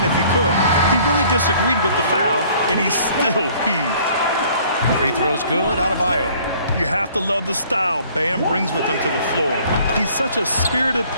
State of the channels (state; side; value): inverted; both; correlation -0.56